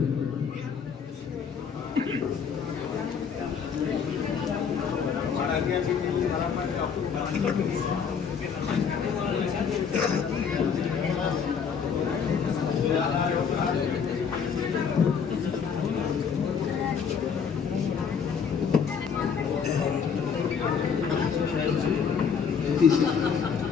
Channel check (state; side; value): quieter; right; 6.6 dB